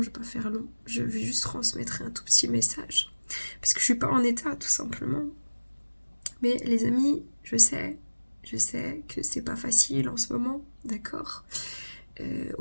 je ne vais pas faire long. Je vais juste transmettre un tout petit message. Parce que je ne suis pas en état, tout simplement. Mais les amis, je sais que c'est pas facile en ce moment, d'accord.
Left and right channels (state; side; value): inverted; both; correlation -1.00